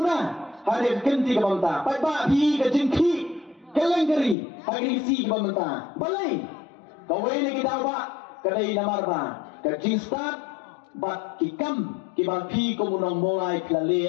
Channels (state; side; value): drops out; right; at 4.4 s